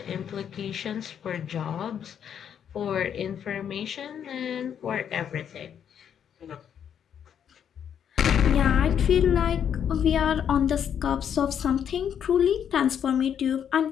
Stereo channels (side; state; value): right; quieter; 8.6 dB